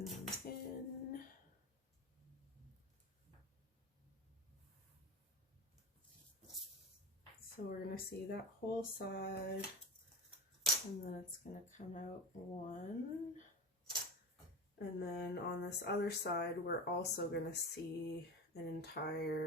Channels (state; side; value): normal; both; correlation 0.26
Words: them in. So we're going to see that whole side, and then it's going to come out one. And then on this other side, we're also going to see an